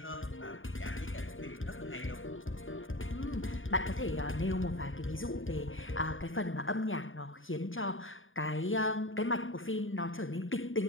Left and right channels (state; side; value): late; right; 0.58 ms